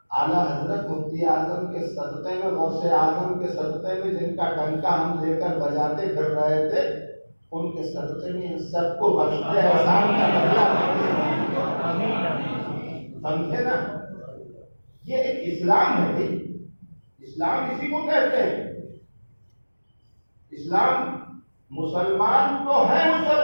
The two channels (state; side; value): inverted; both; correlation -1.00